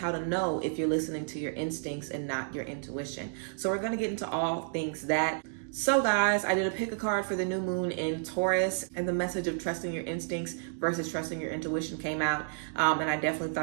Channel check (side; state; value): left; silent; digital silence